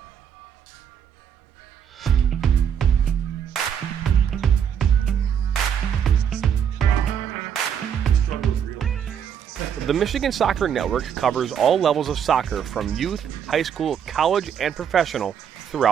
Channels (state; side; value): quieter; left; 8.3 dB